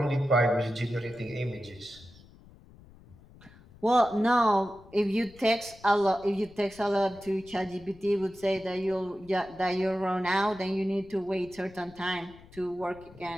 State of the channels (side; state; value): left; noise; rumble, 23 dB below the sound